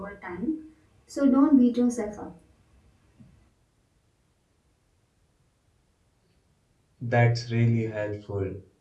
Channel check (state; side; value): identical; both; correlation 1.00